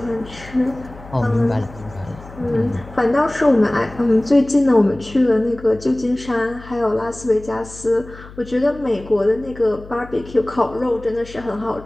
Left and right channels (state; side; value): noise; left; hum, 18 dB below the sound